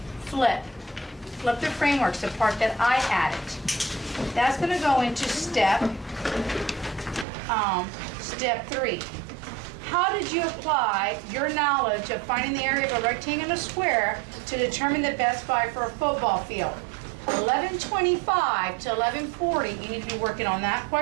Flip the frameworks, the part that I added. That's going to go into step 3. How did you apply your knowledge of finding the area of a rectangle and a square to determine the best buy for a football field? 11:25 to 11:40, you need to be working on that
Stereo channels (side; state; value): left; drops out; at 7.2 s